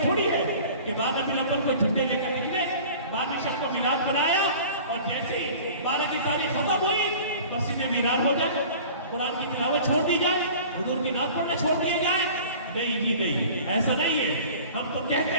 تھوڑی ہے کہ 12 ربیع الاول کو جھنڈے لے کر نکلے، 12ویں شب کو میلاد بنایا اور جیسے 12 کی تاریخ ختم ہوئی مسجدیں ویران ہو جائیں، قرآن کی تلاوت چھوڑ دی جائے، حضور کی نعت پڑھنا چھوڑ دیا جائے. نہیں جی نہیں، ایسا نہیں ہے. ہم تو کہتے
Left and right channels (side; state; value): both; inverted; correlation -0.43